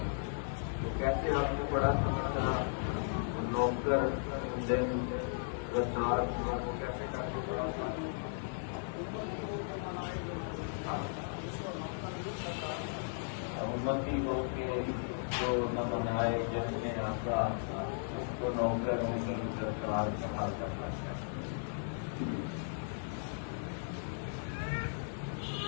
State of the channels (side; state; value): right; silent; digital silence